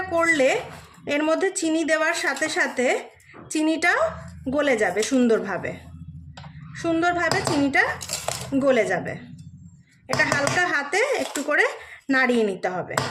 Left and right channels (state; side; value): identical; both; correlation 1.00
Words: করলে, এর মধ্যে চিনি দেওয়ার সাথে সাথে চিনিটাও গলে যাবে, সুন্দরভাবে চিনিটা গলে যাবে। এটা হালকা হাতে একটু করে নাড়িয়ে নিতে হবে,